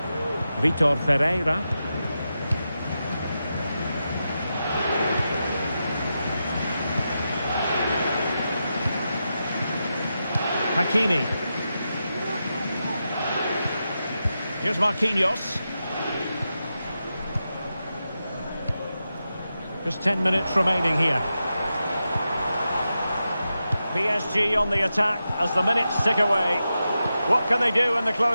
Vitor Ferreira. Hakimi. Here's Marquinhos. Just 10 minutes remaining here. PSG on the attack as the minutes tick away. What can they do in the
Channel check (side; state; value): both; inverted; correlation -0.89